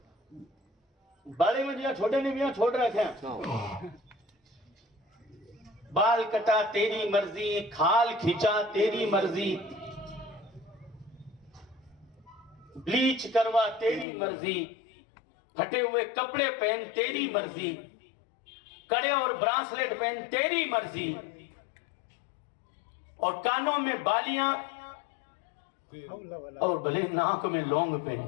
بڑے میں دیا چھوٹے نے بھی یہاں چھوڑ رکھے ہیں. بال کٹا تیری مرضی، کھال کھینچا تیری مرضی، بلیچ کروا تیری مرضی، پھٹے ہوئے کپڑے پہن تیری مرضی، کڑے اور برانسلیٹ پہن تیری مرضی، اور کانوں میں بالیاں اور بھلے ناک میں لونگ پہن.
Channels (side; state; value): right; drops out; at 14.1 s